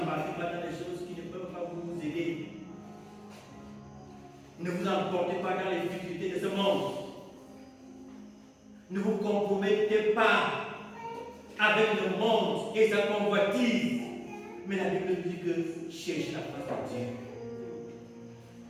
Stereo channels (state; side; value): identical; both; correlation 1.00